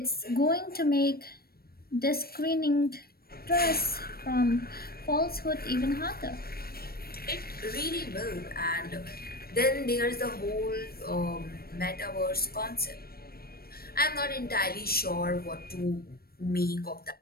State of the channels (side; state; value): right; late; 0.44 ms